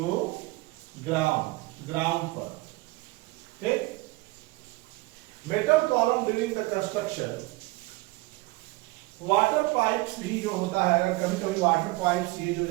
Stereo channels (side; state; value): left; quieter; 22.1 dB